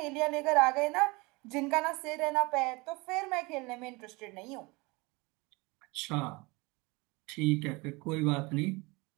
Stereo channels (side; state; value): left; quieter; 25.5 dB